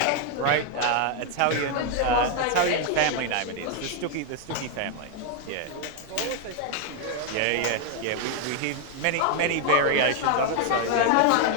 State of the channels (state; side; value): different; both; correlation 0.01